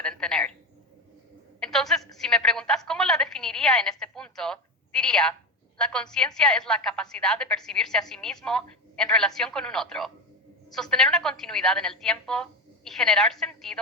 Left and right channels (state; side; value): normal; both; correlation 0.18